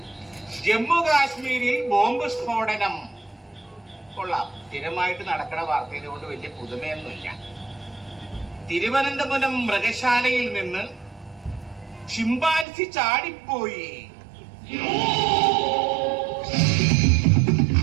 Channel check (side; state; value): left; drops out; at 12.7 s